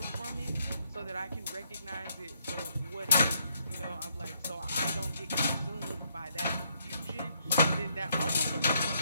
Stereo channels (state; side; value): inverted; both; correlation -0.73